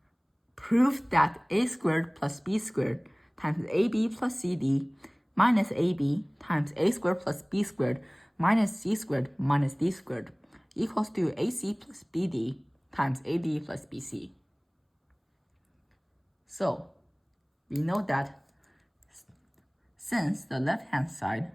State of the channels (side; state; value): both; identical; correlation 1.00